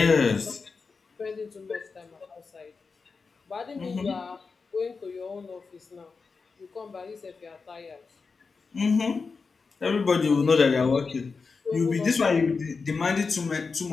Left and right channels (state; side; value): quieter; right; 4.7 dB